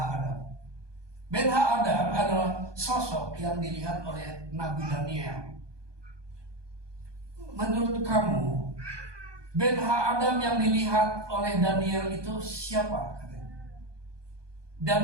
Ben ha-Adam adalah sosok yang dilihat oleh Nabi Daniel. Menurut kamu, Ben ha-Adam yang dilihat oleh Daniel itu siapa?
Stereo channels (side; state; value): left; late; 1.2 ms